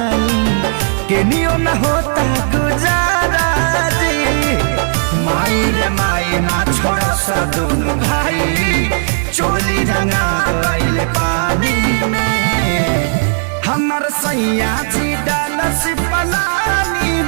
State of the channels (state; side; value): silent; left; digital silence